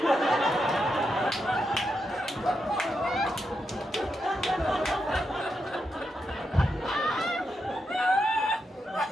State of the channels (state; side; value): normal; both; correlation 0.84